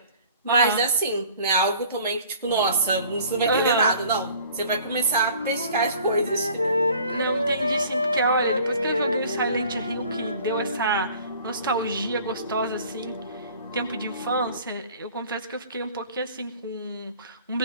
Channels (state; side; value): inverted; both; correlation -0.50